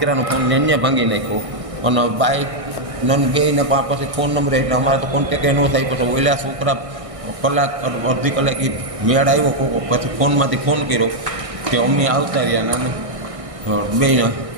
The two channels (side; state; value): left; late; 1.6 ms